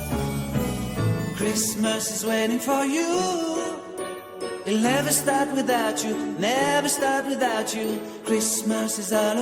Christmas is waiting for you. It'll never start without you, never start without you. Christmas is all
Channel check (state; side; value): identical; both; correlation 1.00